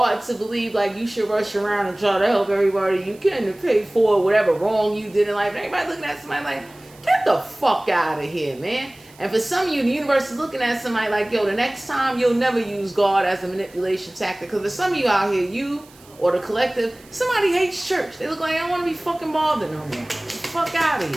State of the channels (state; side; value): noise; right; hiss, 26 dB below the sound